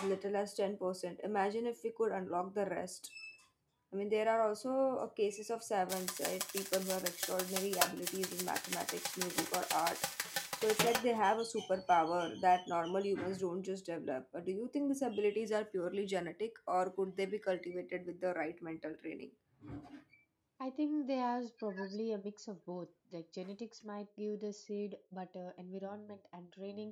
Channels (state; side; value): identical; both; correlation 1.00